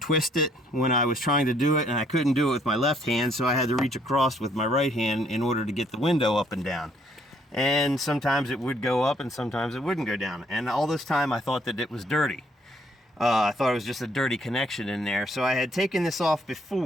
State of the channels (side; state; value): both; normal; correlation 0.67